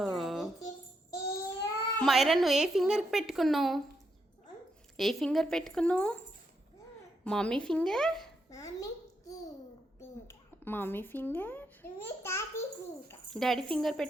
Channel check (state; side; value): normal; both; correlation 0.80